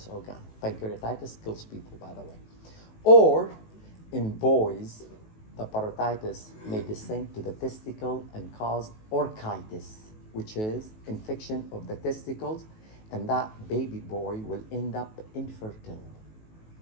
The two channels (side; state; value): right; late; 18 ms